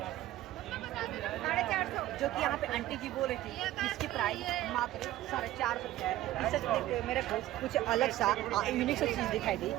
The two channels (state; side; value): quieter; left; 14.8 dB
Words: 450, जो कि यहाँ पे आंटी जी बोल रही थी इसकी प्राइस मात्र 450 रुपया है। इसे देखते हुए मेरे को कुछ अलग सा यूनिक सा चीज़ दिखाई दी।